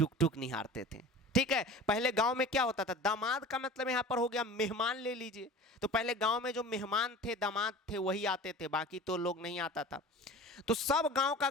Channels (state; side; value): normal; both; correlation 0.39